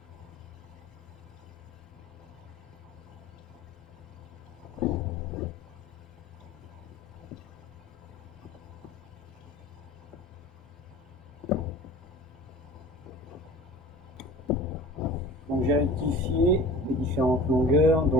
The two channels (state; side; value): normal; both; correlation 0.41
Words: Donc j'ai rectifié les différentes longueurs,